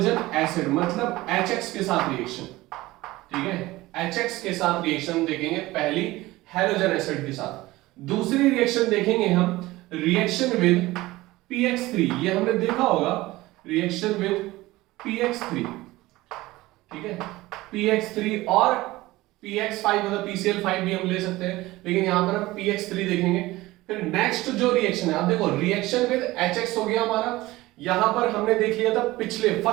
acid मतलब HX के साथ रिएक्शन। ठीक है, HX के साथ रिएक्शन देखेंगे पहली हैलोजन एसिड के साथ। दूसरी रिएक्शन देखेंगे हम रिएक्शन विद PX3। ये हमने देखा होगा, रिएक्शन विद PX3। ठीक है, PX3 और PX5 मतलब PCl5 भी हम ले सकते हैं, लेकिन यहां पर हम PX3 देखेंगे। फिर नेक्स्ट जो रिएक्शन है, अब देखो रिएक्शन विद HX हो गया हमारा। यहां पर हमने देख लिया था पिछले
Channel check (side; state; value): left; quieter; 18.7 dB